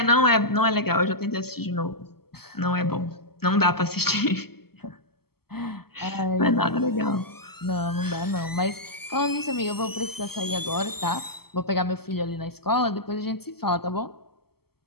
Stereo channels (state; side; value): late; right; 0.96 ms